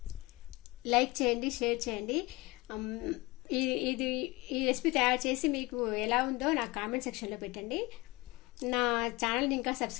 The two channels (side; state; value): right; quieter; 22.5 dB